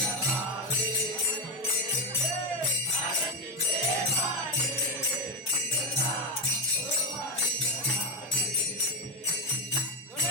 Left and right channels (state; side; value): normal; both; correlation 0.09